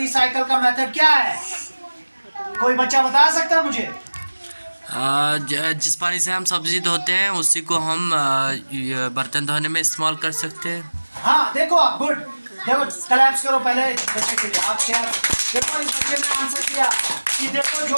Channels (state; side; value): inverted; both; correlation -1.00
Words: का मेथड क्या है? कोई बच्चा बता सकता है मुझे? जिस पानी से हम सब्जी धोते हैं उसी को हम ये बर्तन धोने में इस्तेमाल कर सकते हैं। हाँ देखो आप, गुड। देखो क्लैप्स करो पहले इस बच्चे के लिए। आप शेयर देखो, इस बच्चे ने आंसर किया कि देखो जो